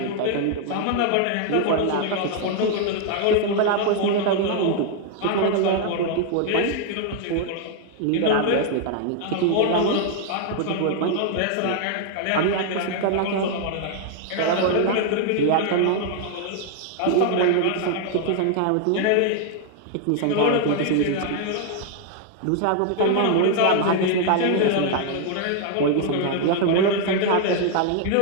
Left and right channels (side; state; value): both; different; correlation 0.00